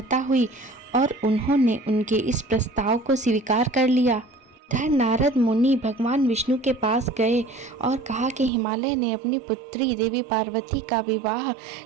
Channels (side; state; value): left; drops out; at 8.5 s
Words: हुई और उन्होंने उनके इस प्रस्ताव को स्वीकार कर लिया। धन नारद मुनि भगवान विष्णु के पास गए और कहा कि हिमालय ने अपनी पुत्री देवी पार्वती का विवाह